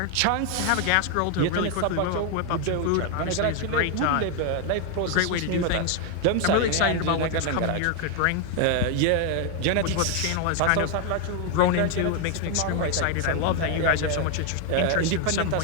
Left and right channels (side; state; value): both; different; correlation 0.01